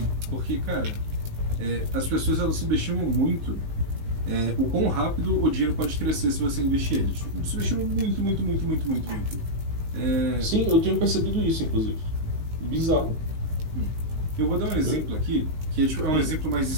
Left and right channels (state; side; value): late; left; 19 ms